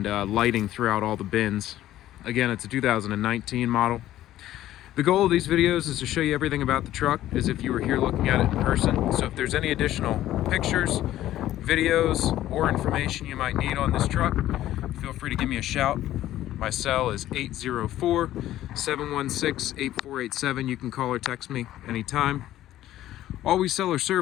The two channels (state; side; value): quieter; right; 13.6 dB